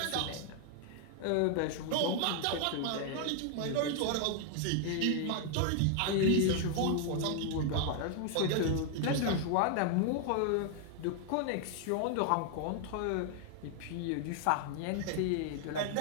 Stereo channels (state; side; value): different; both; correlation 0.00